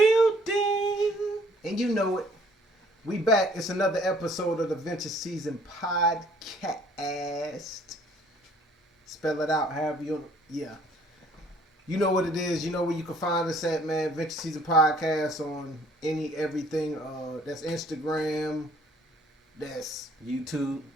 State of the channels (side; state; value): both; normal; correlation 0.59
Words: And you know it. We back. It's another episode of the Venture Season Podcast. Spell it out however you... Yeah. You know what it is. You know where you can find us at, man. Venture Season Podcast on everything. That's Instagram. That's... YouTube.